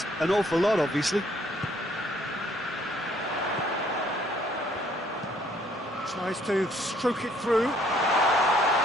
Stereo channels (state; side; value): normal; both; correlation 0.64